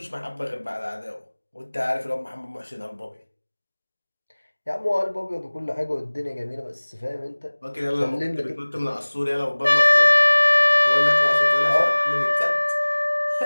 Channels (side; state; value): both; inverted; correlation -1.00